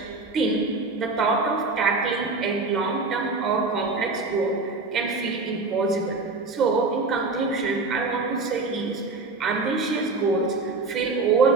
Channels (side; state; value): left; quieter; 3.7 dB